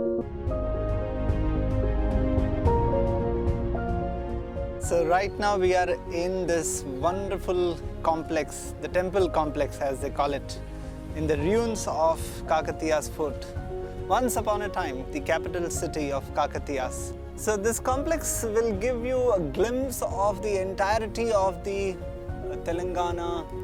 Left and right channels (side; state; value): both; identical; correlation 1.00